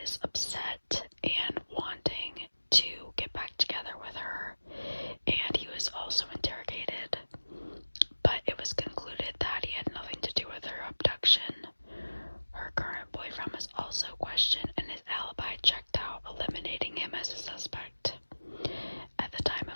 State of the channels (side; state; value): both; inverted; correlation -1.00